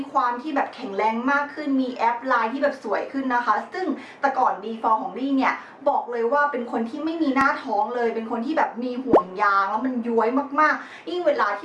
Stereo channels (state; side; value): identical; both; correlation 1.00